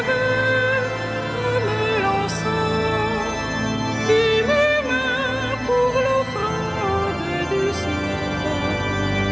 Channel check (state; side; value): identical; both; correlation 1.00